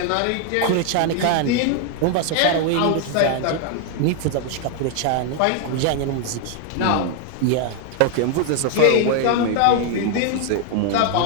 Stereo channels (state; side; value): different; both; correlation 0.00